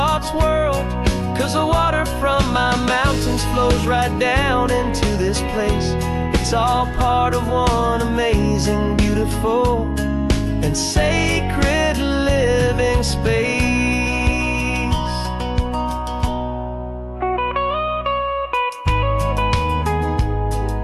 whirled. 'Cause the water from my mountains flows right down into this place. It's all part of one amazing, beautiful, and sacred living space.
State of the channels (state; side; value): identical; both; correlation 1.00